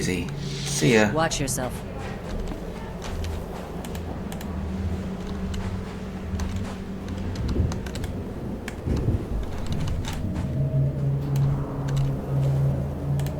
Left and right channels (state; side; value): identical; both; correlation 1.00